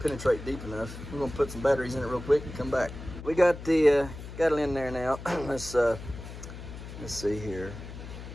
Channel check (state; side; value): noise; left; hum, 11 dB below the sound